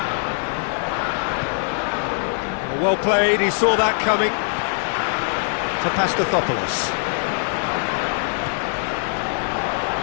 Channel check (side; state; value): right; silent; 64 dB below the other